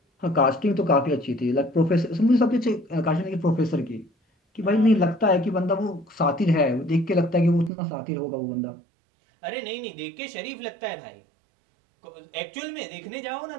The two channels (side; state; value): left; drops out; at 7.7 s